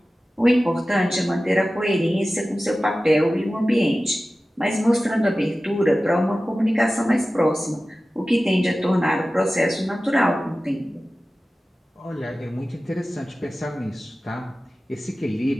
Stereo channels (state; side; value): normal; both; correlation 0.96